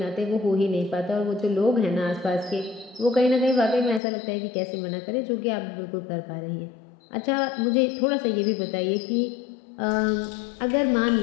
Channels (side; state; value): right; drops out; at 4.0 s